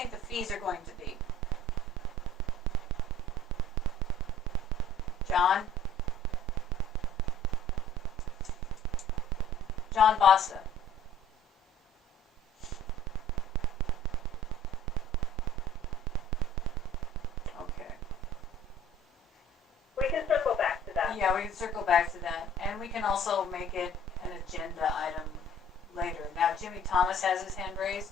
the fees are going to be? John? John Bosta. Okay. We can circle back to that. Yeah, we can circle back to that. And we can also make it an agenda item later. Now, Jimmy Thomas has his hand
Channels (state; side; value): normal; both; correlation 0.52